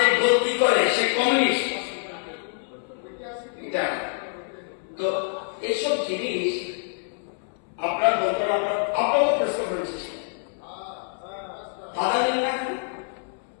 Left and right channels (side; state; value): right; silent; 61 dB below the other